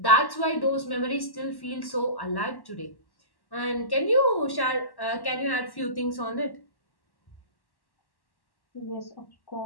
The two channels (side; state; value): right; late; 1.1 ms